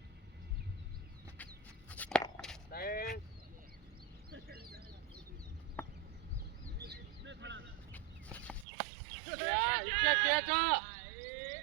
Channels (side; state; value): left; drops out; at 8.7 s